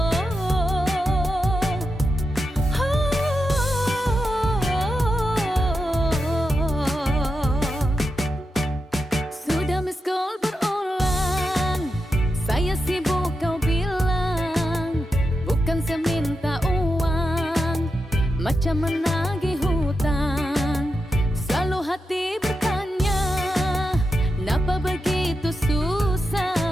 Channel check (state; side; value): normal; both; correlation 0.88